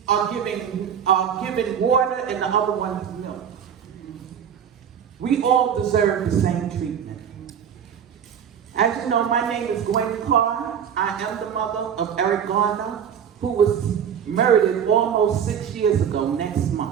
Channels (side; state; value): left; quieter; 8.2 dB